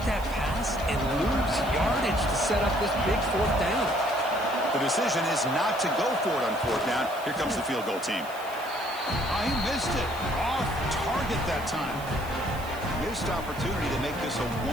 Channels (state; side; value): noise; right; hiss, 18 dB below the sound